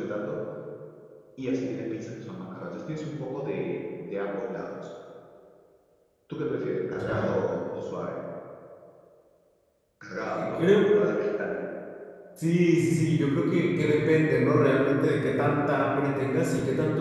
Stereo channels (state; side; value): identical; both; correlation 1.00